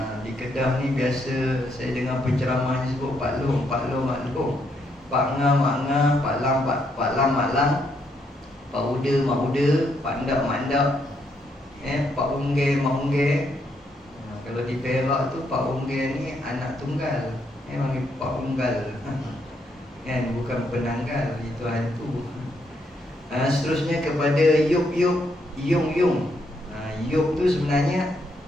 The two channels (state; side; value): normal; both; correlation 0.75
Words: Di Kedah ni biasa saya dengar penceramah ni sebut paklong, maklum, pak ngah, mak ngah, pak lam, mak lam, pak uda, mak uda, pak ndak, mak ndak, pak ungge, mak ungge. Kalau di Perak tu pak ungge ni anak tunggal, panggil pak unggal, bukan penanggal, itu hantu. Seterusnya kepada Yup, Yung. Yup tu sebenarnya